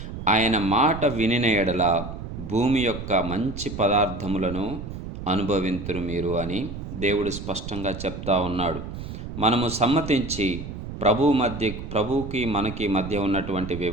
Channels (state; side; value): noise; right; rumble, 8 dB below the sound